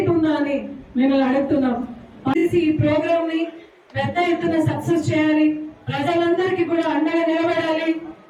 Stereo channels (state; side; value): identical; both; correlation 1.00